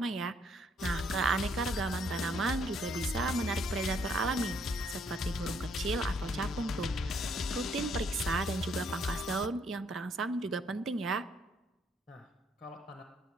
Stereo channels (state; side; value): normal; both; correlation 0.68